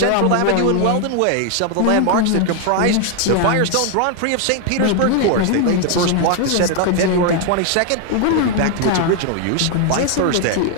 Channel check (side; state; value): both; different; correlation 0.00